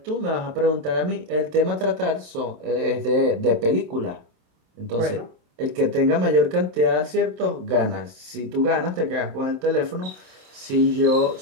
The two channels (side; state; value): left; late; 27 ms